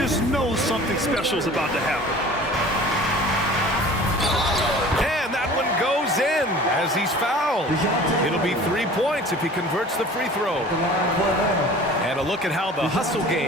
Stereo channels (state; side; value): normal; both; correlation 0.44